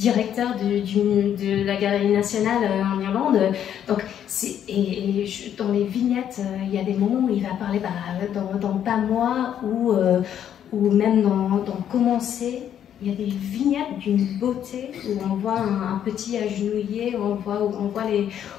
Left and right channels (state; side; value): quieter; right; 9.8 dB